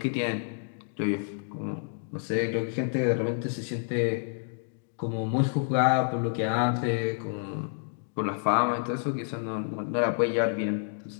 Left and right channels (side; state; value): right; silent; digital silence